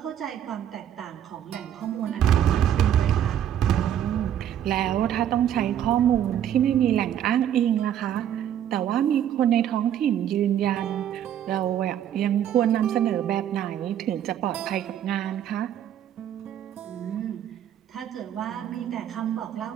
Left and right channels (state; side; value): quieter; left; 10.3 dB